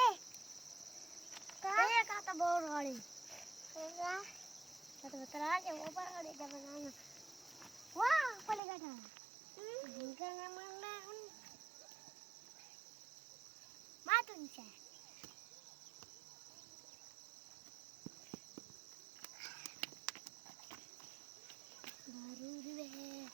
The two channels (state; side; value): drops out; left; at 8.6 s